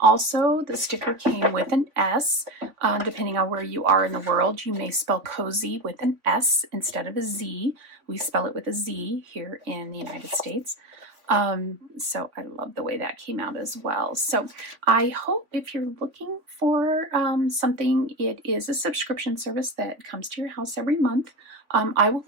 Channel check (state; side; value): late; left; 3.4 ms